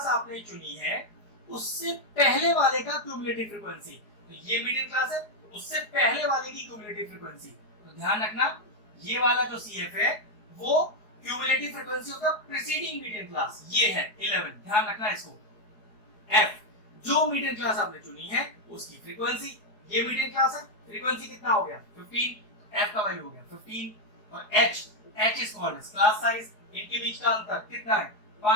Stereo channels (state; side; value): late; right; 4.7 ms